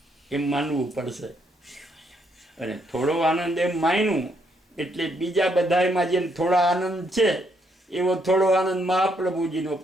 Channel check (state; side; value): normal; both; correlation 0.74